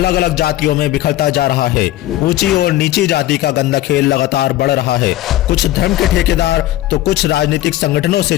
अलग जातियों में बिखरता जा रहा है। ऊंची और नीची जाति का गंदा खेल लगातार बढ़ रहा है। कुछ धर्म के ठेकेदार तो कुछ राजनीतिक संगठनों से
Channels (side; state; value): right; quieter; 14.9 dB